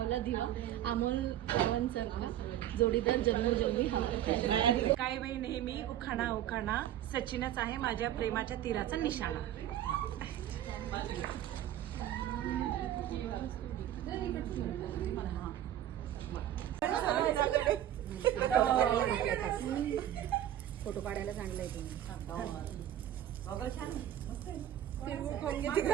दिवा, अमोल गावांचा जोडीदार जन्मोजन्मी हवा. काय बाई नेहमी उखाणा उखाणा, सचिनच आहे माझ्या प्रेमाच्या तीराचा निशाणा. फोटो काढायला सांगलाय तुम्ही.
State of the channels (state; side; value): quieter; left; 11.9 dB